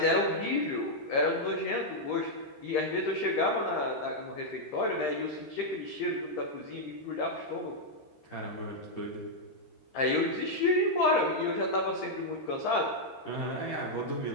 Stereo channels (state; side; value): late; right; 13 ms